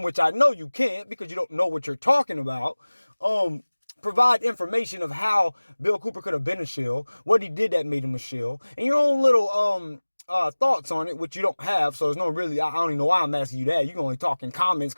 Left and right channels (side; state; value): both; inverted; correlation -1.00